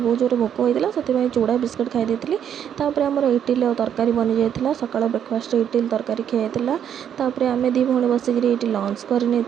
जोर भोक होता से चूड़ा बिस्कुट खाई देती आमर इटिल और तरकारी बनी जाता सकाल ब्रेकफास्ट इटिल तरकारी खाई आम दी भौणी बसिक लंच करनी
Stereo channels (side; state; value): left; quieter; 9.1 dB